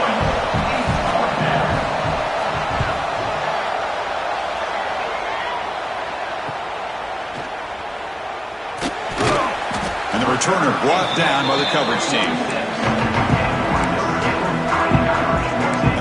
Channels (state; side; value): identical; both; correlation 1.00